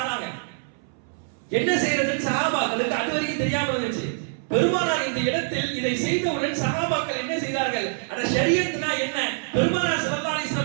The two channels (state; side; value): silent; left; 62 dB below the other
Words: என்ன செய்யறதுன்னு சஹாபாக்களுக்கு அதுவரைக்கும் தெரியாம இருந்துச்சு. பெருமானார் இந்த இடத்தில் இதை செய்தவுடன் சஹாபாக்கள் என்ன செய்தார்கள், அட ஷரியத்னா என்ன, பெருமானார் ஸல்லல்லாஹு அலைஹி